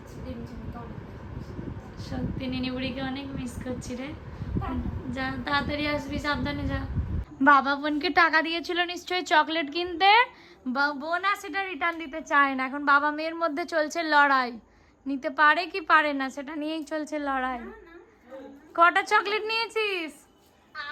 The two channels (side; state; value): both; identical; correlation 1.00